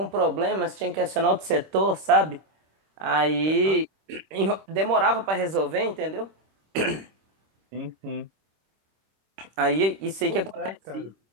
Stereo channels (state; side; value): late; left; 26 ms